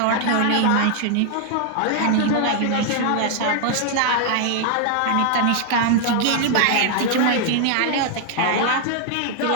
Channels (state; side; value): different; both; correlation 0.00